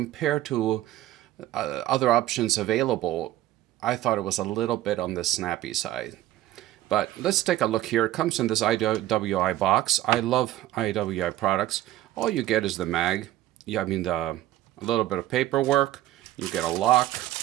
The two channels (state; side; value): quieter; left; 14.3 dB